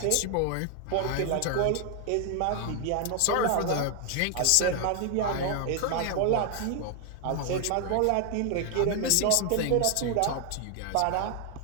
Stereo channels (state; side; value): different; both; correlation 0.00